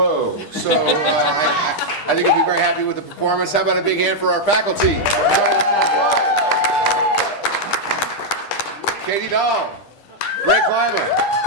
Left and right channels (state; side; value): late; right; 9.9 ms